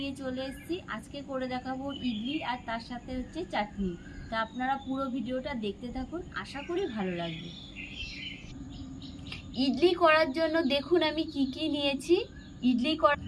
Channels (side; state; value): both; identical; correlation 1.00